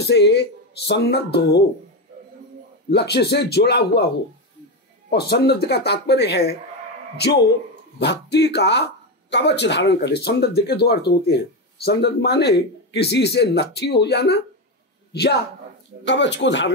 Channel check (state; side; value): normal; both; correlation 0.13